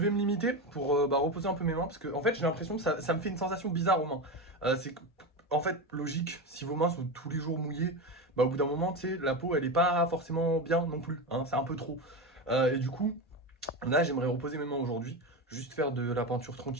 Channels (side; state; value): both; normal; correlation 0.19